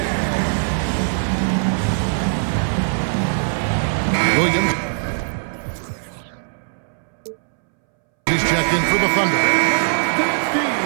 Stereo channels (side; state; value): left; silent; 63 dB below the other